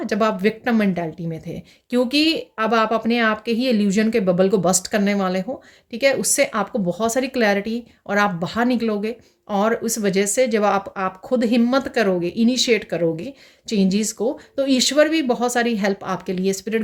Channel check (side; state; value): both; identical; correlation 1.00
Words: जब आप विक्टिम मेंटालिटी में थे, क्योंकि अब आप अपने आप के ही इल्यूजन के बबल को बस्ट करने वाले हो, ठीक है। उससे आपको बहुत सारी क्लैरिटी और आप बाहर निकलोगे, और उस वजह से जब आप खुद हिम्मत करोगे, इनिशिएट करोगे चेंजेस को, तो ईश्वर भी बहुत सारी हेल्प आपके लिए स्पिरिट